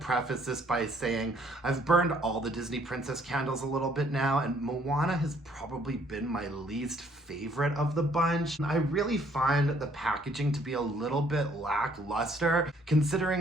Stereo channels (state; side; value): normal; both; correlation 0.64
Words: preface this by saying I've burned all the Disney Princess candles a little bit now, and Moana has probably been my least favorite of the bunch. I really find the packaging to be a little bit lackluster,